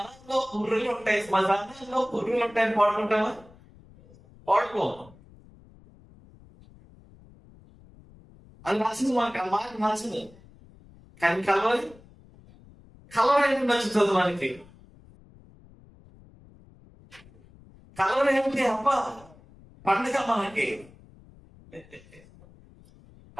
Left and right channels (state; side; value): noise; left; rumble, 24 dB below the sound